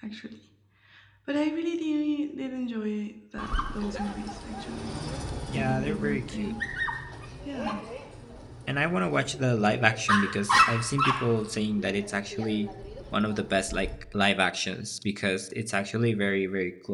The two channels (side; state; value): both; identical; correlation 1.00